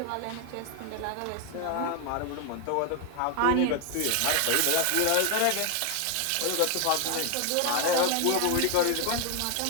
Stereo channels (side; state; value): both; different; correlation 0.00